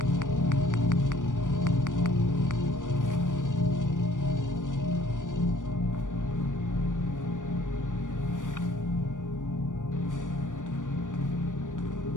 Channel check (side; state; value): right; late; 0.87 ms